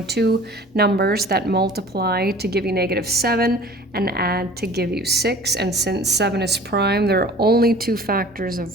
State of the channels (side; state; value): both; normal; correlation 0.45